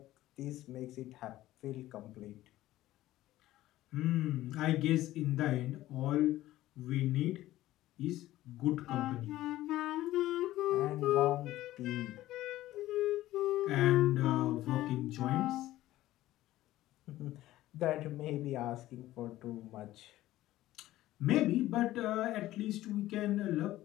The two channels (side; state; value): right; quieter; 15.4 dB